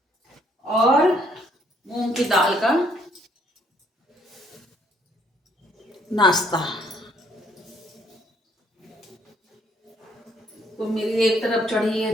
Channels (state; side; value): normal; both; correlation 0.66